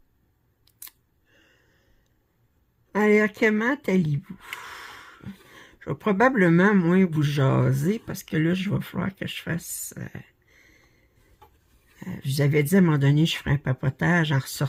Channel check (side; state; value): both; identical; correlation 1.00